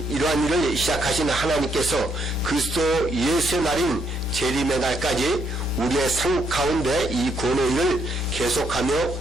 이러한 일을 시작하신 하나님께서 그리스도 예수의 날인 재림의 날까지 우리의 삶 가운데 이 구원의 일을 계속하며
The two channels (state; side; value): normal; both; correlation 0.74